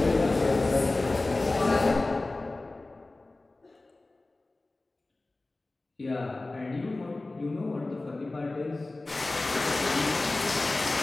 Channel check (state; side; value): quieter; right; 3.1 dB